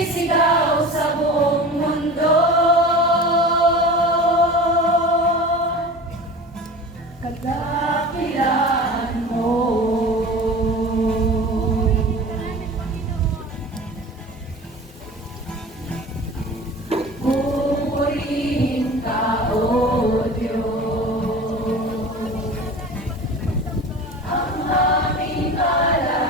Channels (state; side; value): normal; both; correlation 0.36